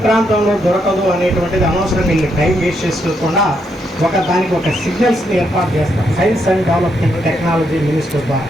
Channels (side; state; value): both; normal; correlation 0.78